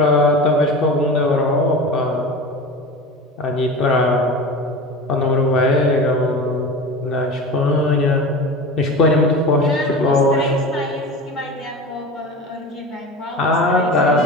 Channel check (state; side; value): normal; both; correlation 0.31